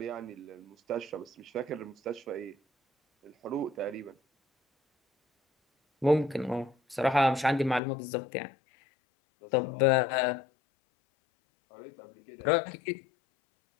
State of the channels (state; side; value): drops out; right; at 7.8 s